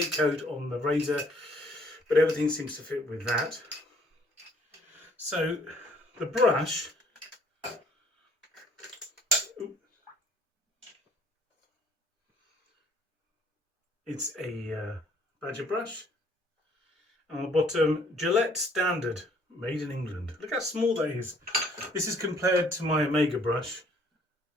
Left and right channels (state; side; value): normal; both; correlation 0.61